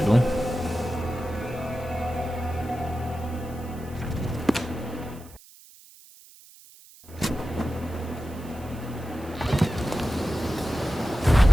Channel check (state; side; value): noise; right; hiss, 22 dB below the sound